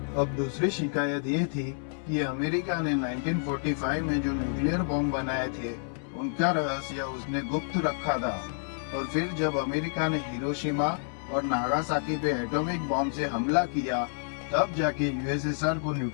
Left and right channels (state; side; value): silent; right; 59 dB below the other